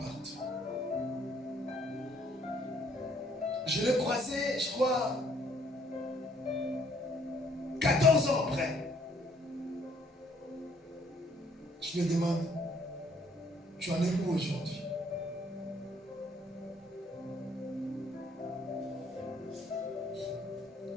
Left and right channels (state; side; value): normal; both; correlation 0.64